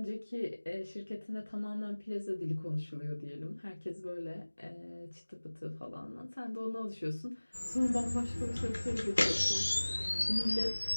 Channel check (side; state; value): both; inverted; correlation -1.00